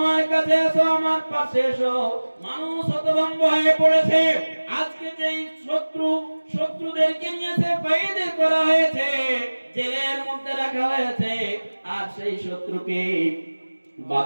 কাছে এসো, আমার পাশে এসো। মানুষ হতভম্ব হয়ে পড়েছে, আজকে যেই শত্রুদেরকে নিয়েছে কয়েদ করা হয়েছে, জেলের মধ্যে রাখা হয়েছে, আর সেই শত্রুকে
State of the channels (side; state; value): both; inverted; correlation -1.00